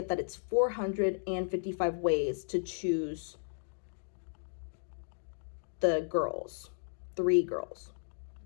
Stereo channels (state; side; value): silent; right; digital silence